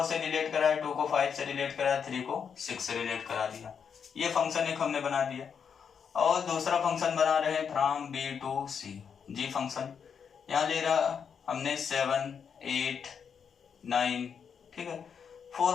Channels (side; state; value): right; quieter; 6.9 dB